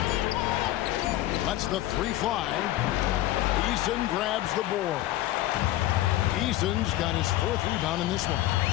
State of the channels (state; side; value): quieter; right; 15.3 dB